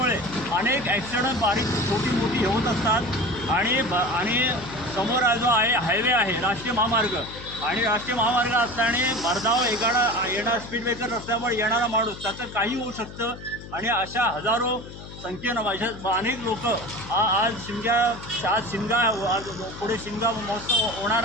अनेक ॲक्सिडेंट बारीक छोटी मोठी होत असतात आणि समोर जो आहे हायवे आहे राष्ट्रीय महामार्ग आणि राष्ट्रीय महामार्ग असल्याने भरधाव येणार स्पीड ब्रेकर नसल्यामुळे येणारा माणूस त्याचं काही होऊ शकतं आणि अशा हजारो संख्येनं अनेक लोक आज शिमगा पुढे शिमगा महोत्सव होणार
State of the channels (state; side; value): noise; left; hum, 14 dB below the sound